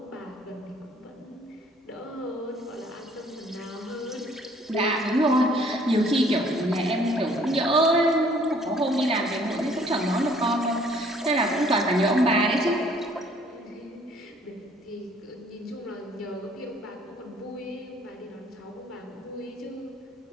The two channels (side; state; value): both; normal; correlation 0.59